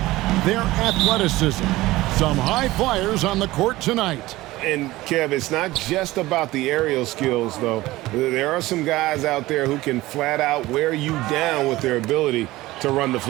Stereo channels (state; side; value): quieter; left; 18.2 dB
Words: their athleticism. Some high flyers on the court tonight. And, Kev, it's not just about the aerial skills, though. There are some guys out there who can flat out wear you down with their ability to run the